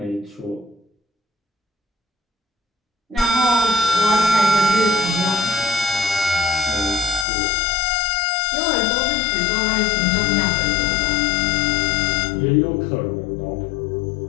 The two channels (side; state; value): right; drops out; at 7.2 s